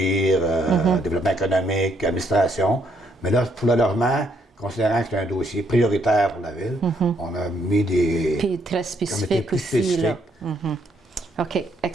développement économique, administration. Mais là, pour le logement, considérant que c'est un dossier prioritaire pour la ville, on a mis des puis très spécifiques aussi. Là. OK,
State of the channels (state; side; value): normal; both; correlation 0.71